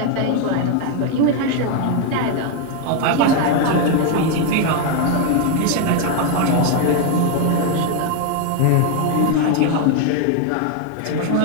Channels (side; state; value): both; different; correlation 0.01